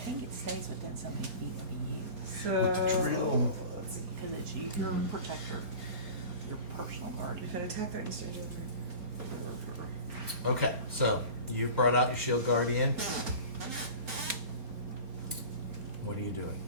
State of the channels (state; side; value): late; left; 4.3 ms